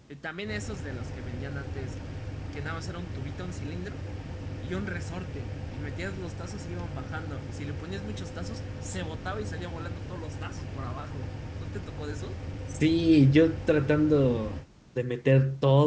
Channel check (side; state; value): both; identical; correlation 1.00